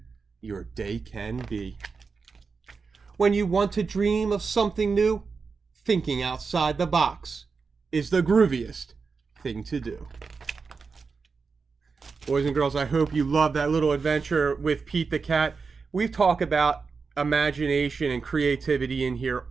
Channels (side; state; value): left; quieter; 4.9 dB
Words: your day can be. When you want to dream of something new, thinking outside the box is the grooviest thing to do. Boys and girls, I hope you love that little adventure with Pete the Cat. We've talked about imagination and creativity in here